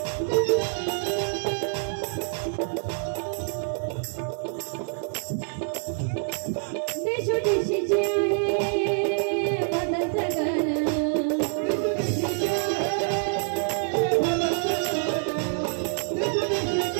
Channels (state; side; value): silent; left; 61 dB below the other